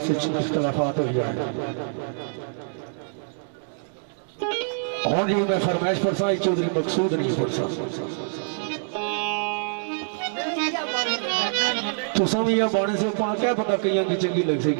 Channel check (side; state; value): left; silent; digital silence